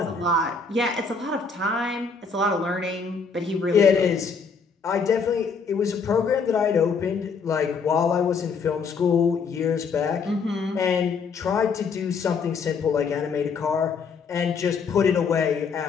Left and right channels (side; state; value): right; quieter; 5.3 dB